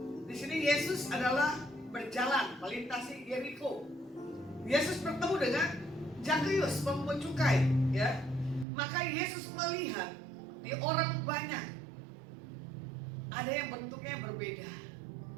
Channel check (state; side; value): drops out; left; at 8.7 s